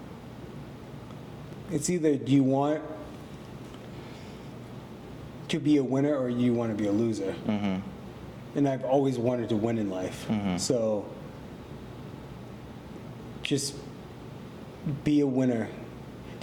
It's either do you want to be a winner or you want to be a loser. And I've always wanted to win in life. So just be a winner.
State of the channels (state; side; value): identical; both; correlation 1.00